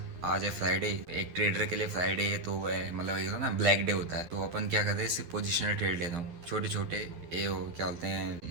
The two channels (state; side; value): late; left; 11 ms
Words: आज है फ्राइडे। एक ट्रेडर के लिए फ्राइडे है तो वह मतलब एक ना ब्लैक डे होता है। तो अपन क्या करते हैं, सिर्फ पोजिशनल ट्रेड लेता हूँ, छोटे छोटे ये हो क्या बोलते हैं,